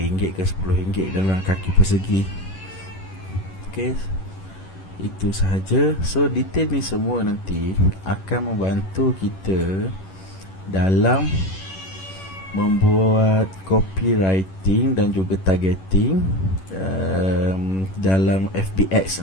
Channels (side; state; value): right; late; 11 ms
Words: ke RM10 dalam kaki persegi. Okay, itu sahaja. So detail ni semua nanti akan membantu kita dalam membuat copywriting dan juga targeting dalam